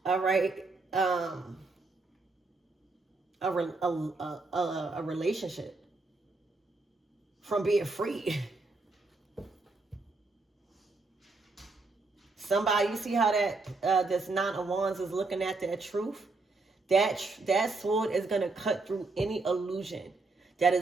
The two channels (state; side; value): quieter; left; 3.5 dB